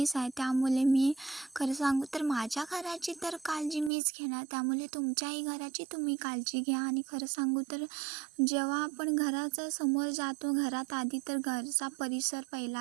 आहे. त्यामुळे मी खरं सांगू तर माझ्या घराची तर काळजी मीच घेणार. त्यामुळे तुमच्याही घराची तुम्ही काळजी घ्या. आणि खरं सांगू तर जेव्हा आपण घराच्या समोर जातो, घरात आधी तर घरचा परिसर पहिला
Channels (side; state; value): left; drops out; at 3.9 s